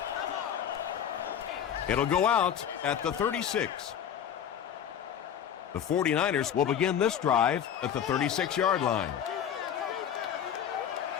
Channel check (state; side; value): quieter; right; 9.0 dB